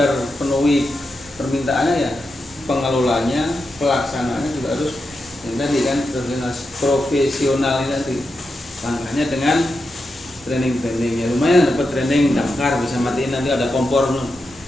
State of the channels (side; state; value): both; normal; correlation 0.88